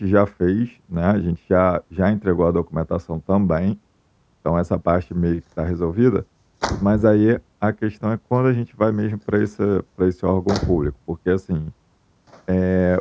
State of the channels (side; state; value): both; identical; correlation 1.00